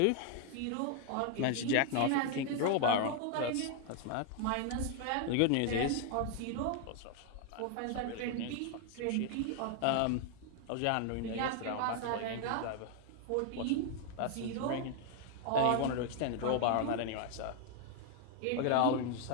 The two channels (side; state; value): both; different; correlation 0.00